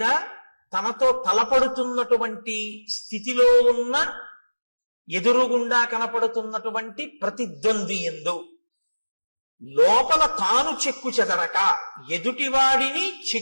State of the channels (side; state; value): both; inverted; correlation -1.00